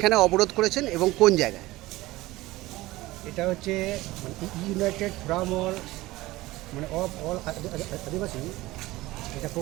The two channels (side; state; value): left; quieter; 18.7 dB